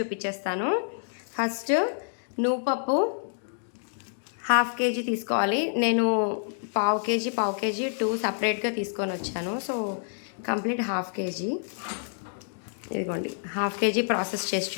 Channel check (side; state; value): right; silent; digital silence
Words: ఫస్ట్ నువ్వు పప్పు 1/2 kg తీసుకోవాలి. నేను పావు కేజీ 2 సపరేట్గా తీసుకొని వచ్చాను. So complete 1/2 kg. ఇదిగోండి 1/2 kg ప్రాసెస్ చేసి